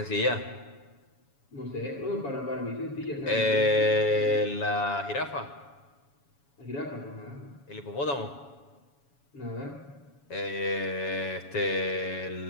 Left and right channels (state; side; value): late; right; 7.1 ms